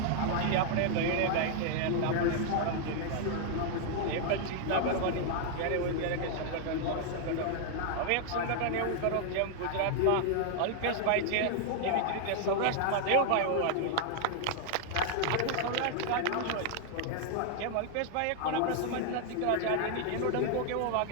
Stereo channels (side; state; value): both; different; correlation 0.00